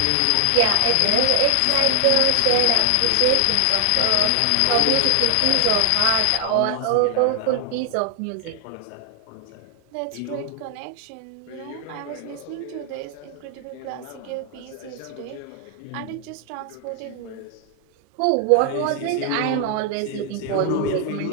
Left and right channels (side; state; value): both; different; correlation 0.00